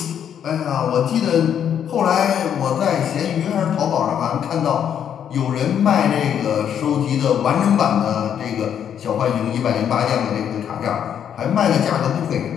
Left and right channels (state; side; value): quieter; right; 8.9 dB